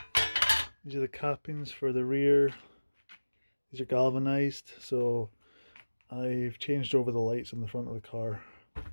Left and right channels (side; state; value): both; inverted; correlation -1.00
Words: These are the cappings for the rear. These are galvanized, so I've changed over the lights on the front of the car.